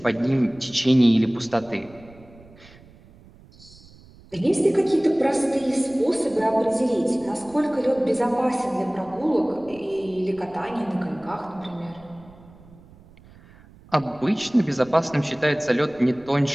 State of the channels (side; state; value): right; noise; rumble, 24 dB below the sound